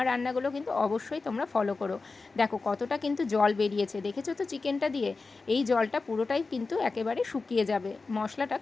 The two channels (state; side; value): quieter; right; 4.0 dB